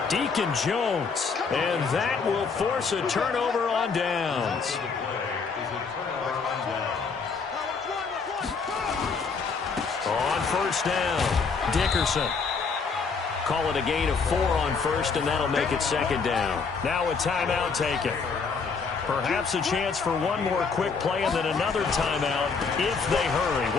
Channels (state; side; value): quieter; right; 5.1 dB